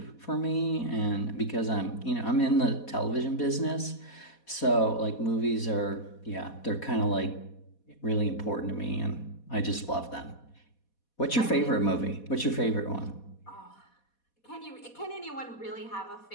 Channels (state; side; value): late; right; 4.2 ms